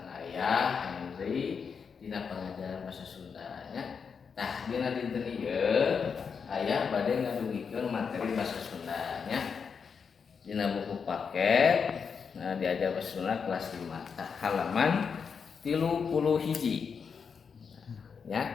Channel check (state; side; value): quieter; right; 6.1 dB